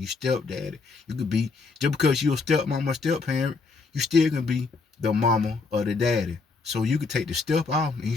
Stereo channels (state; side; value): quieter; right; 4.3 dB